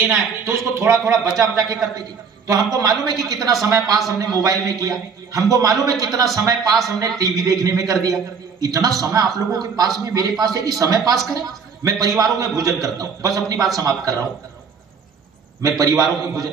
है, तो उसको थोड़ा थोड़ा बचा बचा के करते जी। तो हमको मालूम है कि कितना समय पास हमने मोबाइल में किया, हमको मालूम है कितना समय पास हमने टीवी देखने में कर दिया। इतना समय आप लोगों के पास में, मेरे पास है कि समय पास करें। मैं परिवारों में भोजन करता हूं, बस अपनी बात समाप्त कर रहा हूं। मैं परिवारों में भोजन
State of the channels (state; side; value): quieter; left; 5.8 dB